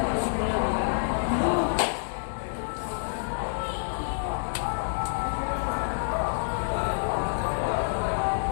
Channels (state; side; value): silent; right; digital silence